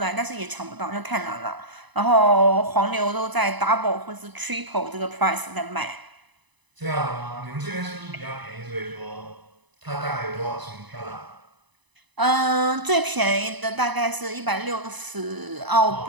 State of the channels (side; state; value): left; late; 1.0 ms